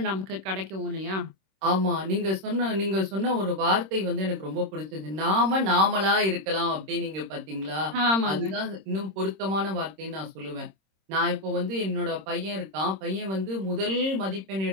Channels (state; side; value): late; left; 26 ms